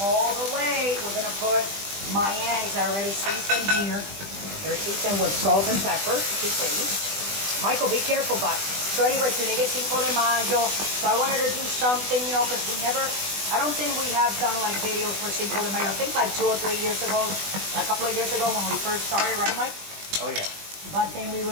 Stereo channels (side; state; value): left; late; 20 ms